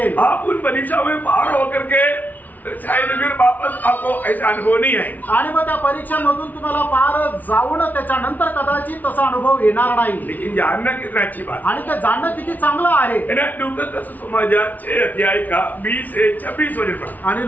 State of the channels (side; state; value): right; late; 0.078 ms